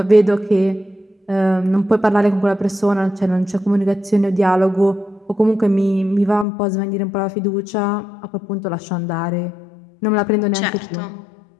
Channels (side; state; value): right; drops out; at 6.5 s